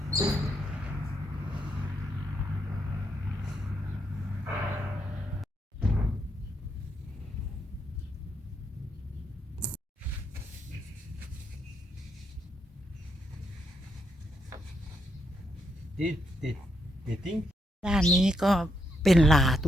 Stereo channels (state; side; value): normal; both; correlation 0.78